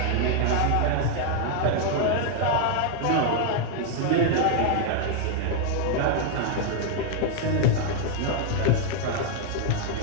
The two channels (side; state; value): both; different; correlation 0.00